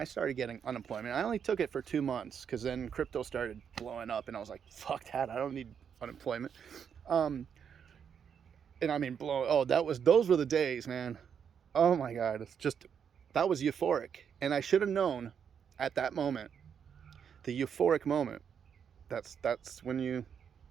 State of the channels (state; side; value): quieter; left; 7.5 dB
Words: started getting unemployment, I only took it for 2 months because then crypto started blowing up and I was like, fuck that, I don't need unemployment. And I mean, those were the days, man. Oh my God. That was euphoric. And I should have known at that moment, the euphoric moment, that's when you